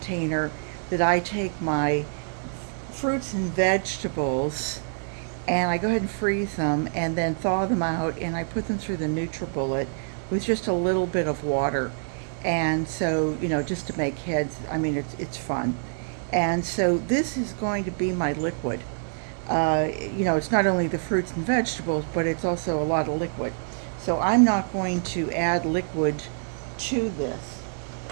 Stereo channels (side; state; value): left; silent; digital silence